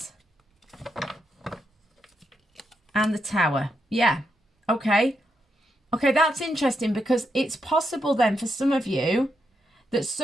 and the Tower. Yeah, okay. Okay, that's interesting, because it's possible then for some of you that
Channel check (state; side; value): normal; both; correlation 0.82